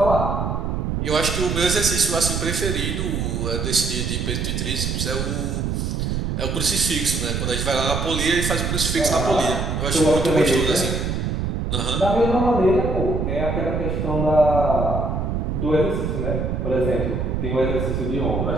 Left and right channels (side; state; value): right; noise; rumble, 1 dB below the sound